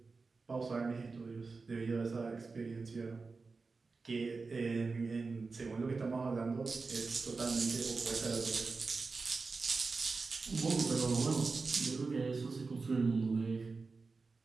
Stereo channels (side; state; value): left; quieter; 4.2 dB